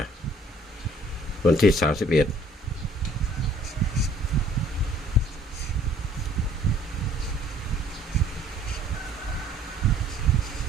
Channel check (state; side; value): normal; both; correlation 0.58